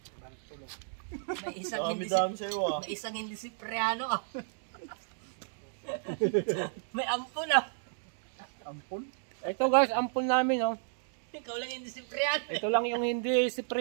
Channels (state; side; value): silent; left; digital silence